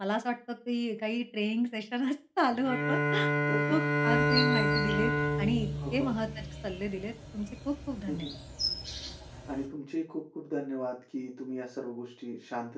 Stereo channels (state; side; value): identical; both; correlation 1.00